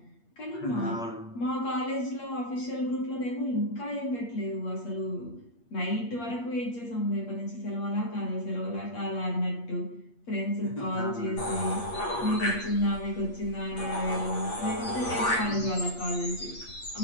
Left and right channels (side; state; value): right; late; 8.5 ms